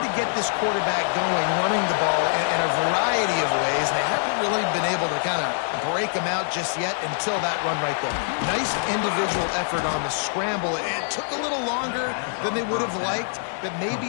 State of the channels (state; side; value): silent; right; digital silence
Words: to get this quarterback going, running the ball in a variety of ways, and they haven't really been able to kind of break him out just yet until that run right there. Nice individual effort on the scramble. It took a little longer than they would have liked, but